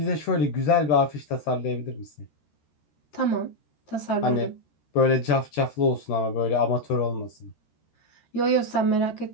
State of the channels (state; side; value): late; right; 13 ms